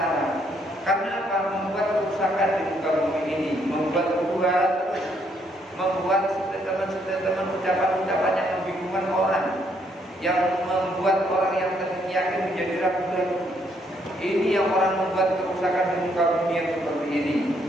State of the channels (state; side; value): normal; both; correlation 0.71